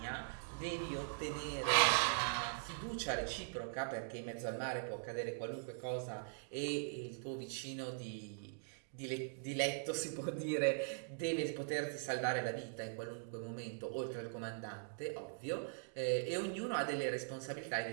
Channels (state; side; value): silent; left; digital silence